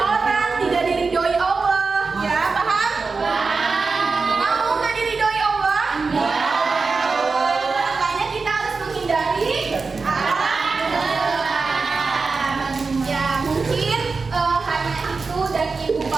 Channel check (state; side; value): quieter; left; 4.4 dB